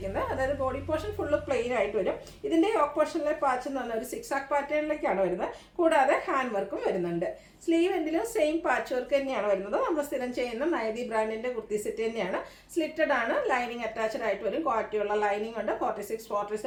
അതായത് ബോഡി പോർഷൻ ഫുള്ള് പ്ലെയിൻ ആയിട്ട് വരും. ഇതിൻ്റെ യോക്ക് പോർഷനിലെ പാച്ച് എന്ന് പറഞ്ഞാൽ ഒരു 6 ആക്ക് പാറ്റേണിലേക്കാണ് വരുന്നത്. കൂടാതെ ഹാൻഡ് വർക്കും വരുന്നുണ്ട്. സ്ലീവ് എൻഡിലും സെയിം പാച്ച് വർക്ക് തന്നെയാണ് വരുന്നത്. നമ്മൾ സ്ഥിരം ചെയ്യുന്ന നൈതി ബ്രാൻഡിൻ്റെ കുർത്തി സെറ്റ് തന്നെയാണ്. സ്ലിറ്റഡ് ആണ്, ലൈനിങ് അറ്റാച്ച്ഡ് ആയിട്ട് വരും. ക്വാളിറ്റിയുള്ള ലൈനിങ് ഉണ്ട്.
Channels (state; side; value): identical; both; correlation 1.00